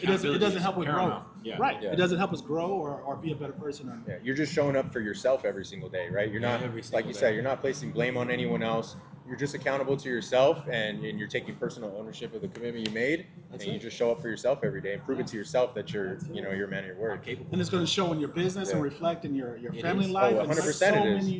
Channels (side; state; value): both; identical; correlation 1.00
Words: doesn't Accountability help is with growth. paramount. Yeah. Right. Yeah. It doesn't help us grow or be a better person. Or, Yeah, you're just showing up for yourself every single day, right? You're not, Every like single you day. said, you're not placing blame on anyone else. You're just accountable to yourself, and you're taking personal ownership of the commitment you made, That's and you it. just show up for yourself every day and prove it to yourself that you're, you know, you're a man of your I'm word. capable. and it's going to show in your business and Yeah. reflect in your It family is. life. Oh, and 100% so it is.